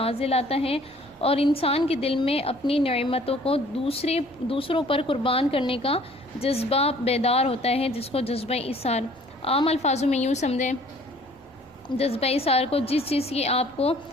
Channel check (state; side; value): normal; both; correlation 0.55